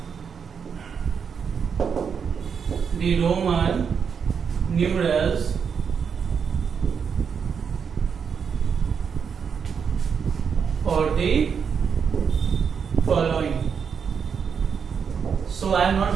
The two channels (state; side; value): quieter; left; 6.6 dB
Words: the Roman numerals for the following. So I am not